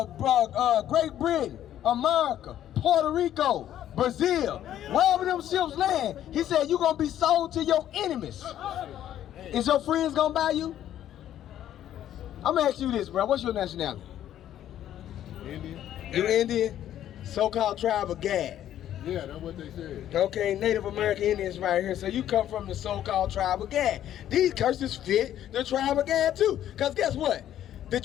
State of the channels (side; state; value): right; quieter; 11.5 dB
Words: Great Britain, America, Puerto Rico, Brazil, wherever them ships land, he said you're gonna be sold to your enemies. Is your friends gonna buy you? I'm gonna ask you this, bro. What's your nationality? Indian. You Indian? So-called tribe of Gad. Yeah, that's what they said. Okay, Native American Indians right here. So you come from the so-called tribe of Gad. These curses fit the tribe of Gad too. Because guess what? The